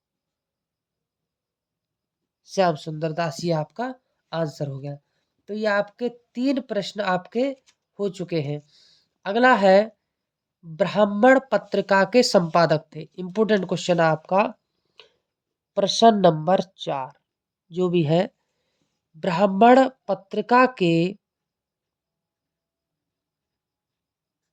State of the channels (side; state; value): both; identical; correlation 1.00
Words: श्याम सुंदर दास, ये आपका आंसर हो गया। तो ये आपके तीन प्रश्न आपके हो चुके हैं। अगला है, ब्राह्मण पत्रिका के संपादक थे। इंपोर्टेंट क्वेश्चन है आपका, प्रश्न नंबर 4 जो भी है, ब्राह्मण पत्रिका के